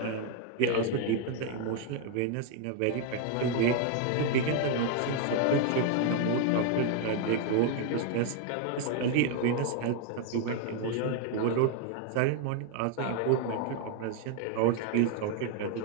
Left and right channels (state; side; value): different; both; correlation 0.00